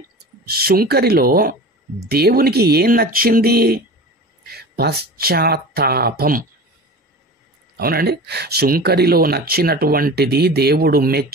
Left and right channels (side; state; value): both; normal; correlation 0.35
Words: సుంకరిలో దేవునికి ఏం నచ్చింది? పశ్చాత్తాపం. అవునండి, సుంకరిలో నచ్చినటువంటిది, దేవుడు